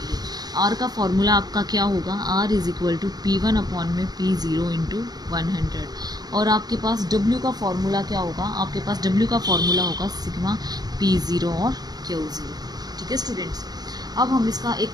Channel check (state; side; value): late; left; 0.19 ms